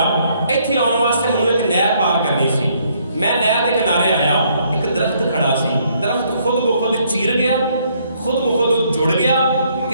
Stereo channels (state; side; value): inverted; both; correlation -0.68